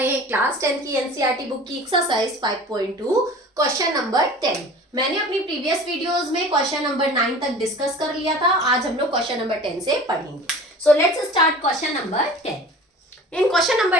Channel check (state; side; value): normal; both; correlation 0.41